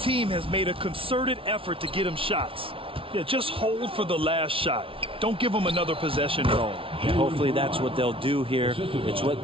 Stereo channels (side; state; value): left; late; 0.26 ms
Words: has made a concerted effort to get him shots. Yeah, just hold for the last shot. Don't give him another possession at all. And hopefully that's what they'll do here. It's